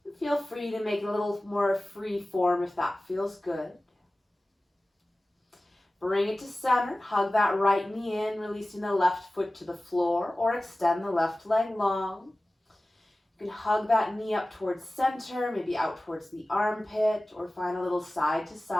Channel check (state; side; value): normal; both; correlation 0.97